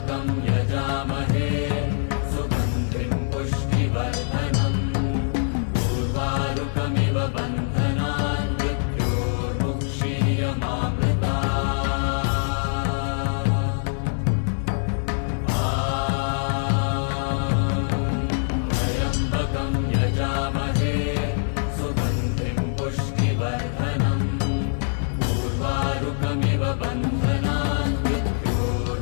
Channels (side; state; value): right; silent; digital silence